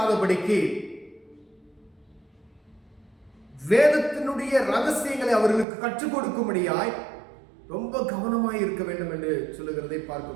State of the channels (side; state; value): left; drops out; at 5.7 s